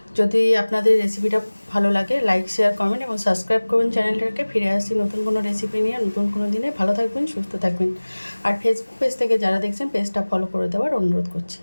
যদি আপনাদের রেসিপিটা ভালো লাগে, লাইক, শেয়ার, কমেন্ট এবং সাবস্ক্রাইব করবেন চ্যানেলটাকে। ফিরে আসছি নতুন কোনো রেসিপি নিয়ে, নতুন কোনো দিনে। ভালো থাকবেন, সুস্থ থাকবেন। আর ফেসবুক পেজ থেকে যারা দেখছেন, পেজটা ফলো করে দেওয়ার অনুরোধ করছি।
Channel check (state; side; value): inverted; both; correlation -1.00